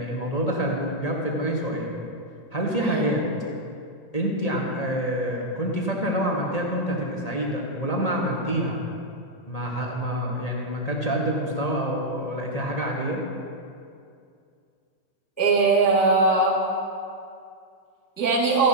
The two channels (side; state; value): right; late; 1.5 ms